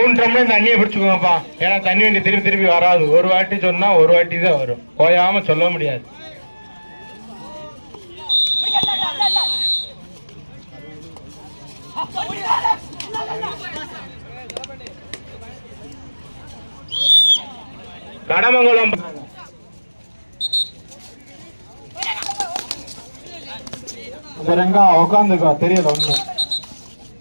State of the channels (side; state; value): both; inverted; correlation -1.00